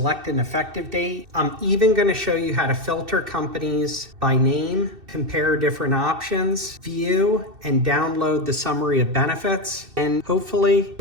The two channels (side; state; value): left; late; 2.7 ms